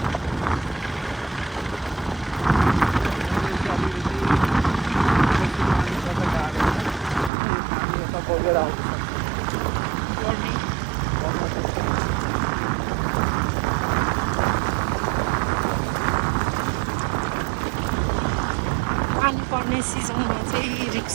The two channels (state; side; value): drops out; left; at 7.3 s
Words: पानी पर्ने सिजनमा चाहिँ